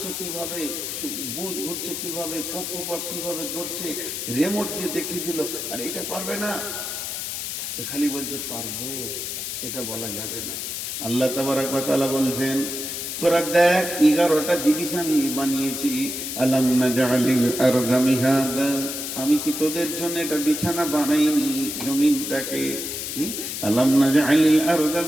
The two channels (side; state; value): left; noise; hiss, 5 dB below the sound